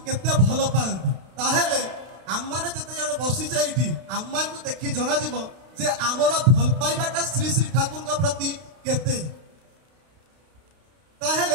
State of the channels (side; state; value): left; late; 32 ms